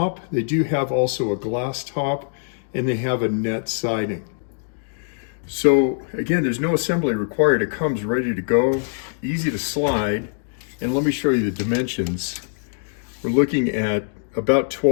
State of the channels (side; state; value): right; silent; digital silence